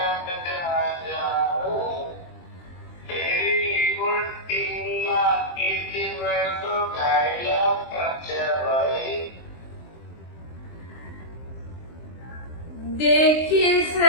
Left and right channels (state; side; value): late; right; 23 ms